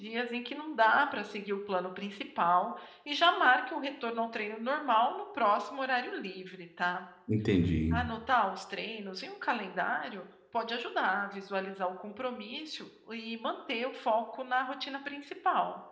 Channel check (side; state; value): both; identical; correlation 1.00